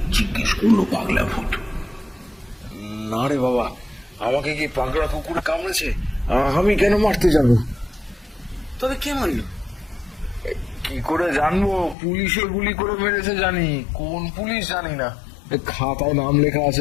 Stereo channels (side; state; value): right; drops out; at 12.0 s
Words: জিজ্ঞেস করলো পাগলা ভূত। না রে বাবা, আমাকে কি পাগলা কুকুরে কামড়েছে? আমি কেন মারতে যাব? তবে কে মারলো? কি করে জানবো? পুলিশে গুলি করে মেরেছে জানি, কোন পুলিশ জানি না, খাতায় নাম লেখা